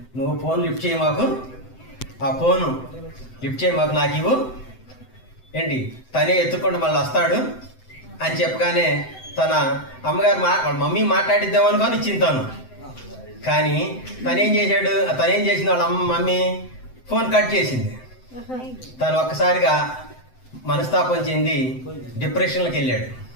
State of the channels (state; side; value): late; right; 7.8 ms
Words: నువ్వు ఫోన్ లిఫ్ట్ చేయి మాకు, ఆ ఫోను లిఫ్ట్ చేయి మాకు, నాకు ఇవ్వు ఏంటి, తనే ఎత్తుకుంటూ మళ్ళీ వస్తాడు అని చెప్పగానే తన అమ్మగారు వాళ్ళ మమ్మీ మాట్లాడిద్దామనుకొని ఇచ్చింది తను. కానీ తనేం చేసింది, వాళ్ళ మమ్మీ ఫోన్ కట్ చేసింది. తను ఒక్కసారిగా మనస్తాపం చెంది డిప్రెషన్లోకి వెళ్ళాడు.